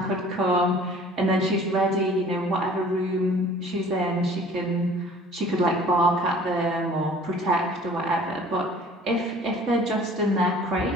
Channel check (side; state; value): both; normal; correlation 0.50